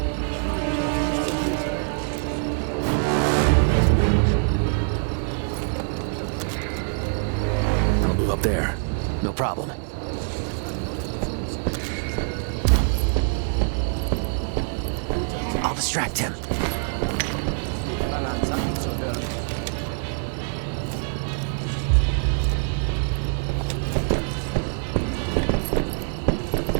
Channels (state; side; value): silent; left; 62 dB below the other